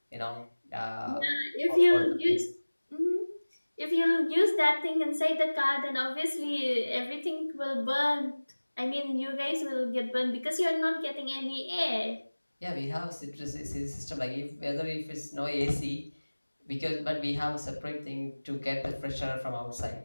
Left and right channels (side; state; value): both; inverted; correlation -1.00